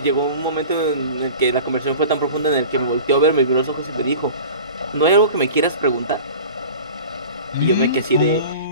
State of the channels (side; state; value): both; inverted; correlation -0.38